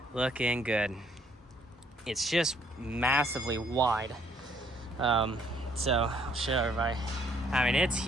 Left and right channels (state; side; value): normal; both; correlation 0.65